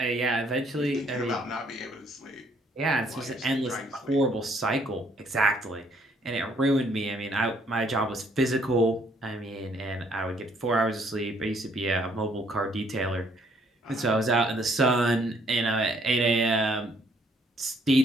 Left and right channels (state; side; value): normal; both; correlation 0.66